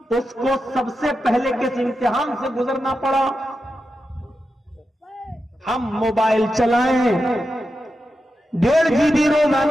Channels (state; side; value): normal; both; correlation 0.89